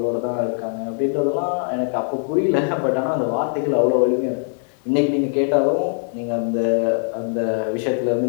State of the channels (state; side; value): silent; right; 60 dB below the other